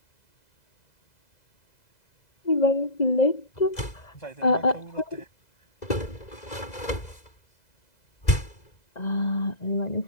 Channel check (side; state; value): right; late; 2.0 ms